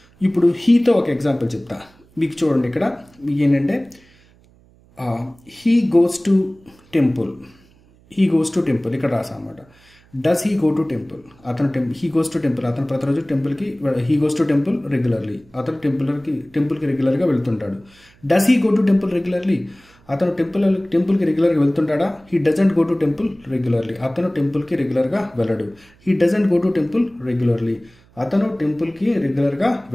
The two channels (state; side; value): noise; right; hum, 30 dB below the sound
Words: ఇప్పుడు హీతో ఒక ఎగ్జాంపుల్ చెప్తా. మీకు చూడండి, ఇక్కడ మీకు ఏంటంటే హీ గోస్ టు టెంపుల్, ఇక్కడ రాసా అనమాట. Does he go to temple, he goes to temple, అతను ప్రతిరోజు టెంపుల్కి, he goes to temple regularly, అతను టెంపుల్కి రెగ్యులర్గా వెళ్తుంటాడు. Does he go to temple regularly, అతను టెంపుల్కి రెగ్యులర్గా వెళ్తుంటాడా. He doesn't go to temple regularly, అతను టెంపుల్కి రెగ్యులర్గా వెళ్ళడు. He doesn't go to temple regularly, అతను టెంపుల్కి రెగ్యులర్గా